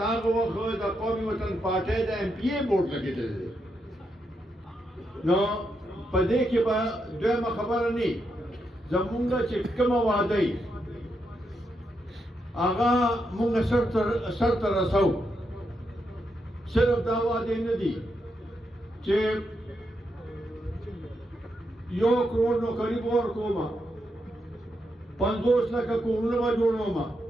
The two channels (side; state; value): both; normal; correlation 0.82